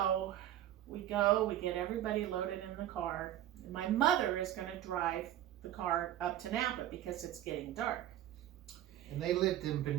we get everybody loaded in the car, and my mother is going to drive the car up to Napa because it's getting dark. And they lived in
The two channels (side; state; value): left; quieter; 12.4 dB